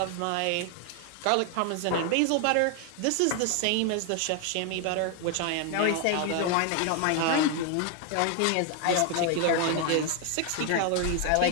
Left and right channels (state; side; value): different; both; correlation 0.01